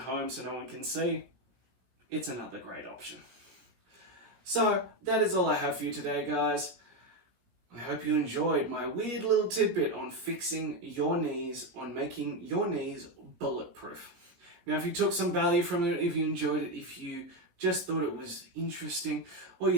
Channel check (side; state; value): left; late; 17 ms